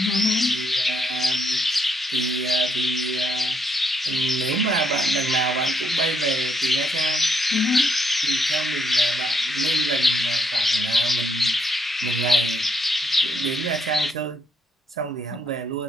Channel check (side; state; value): both; normal; correlation 0.74